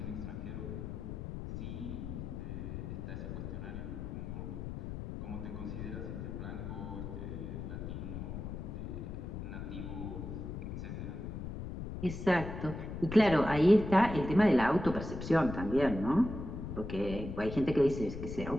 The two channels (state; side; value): noise; left; rumble, 7 dB below the sound